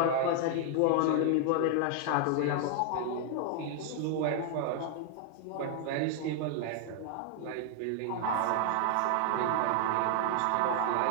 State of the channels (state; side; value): different; both; correlation 0.00